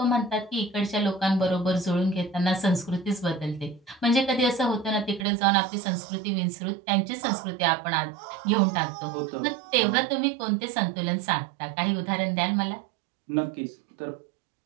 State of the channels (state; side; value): drops out; left; at 5.2 s